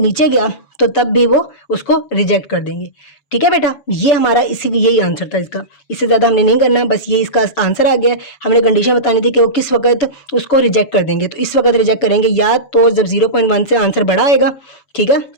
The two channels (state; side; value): late; right; 7.2 ms